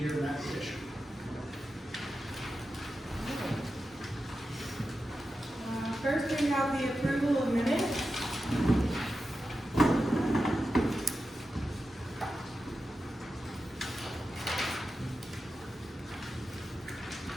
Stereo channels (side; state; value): both; normal; correlation 0.91